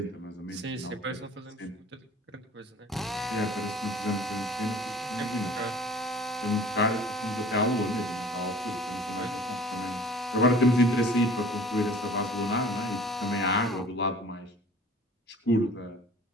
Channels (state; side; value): normal; both; correlation 0.47